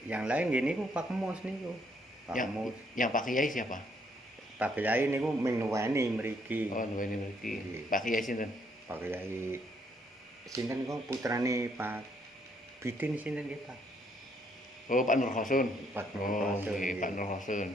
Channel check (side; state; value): both; normal; correlation 0.70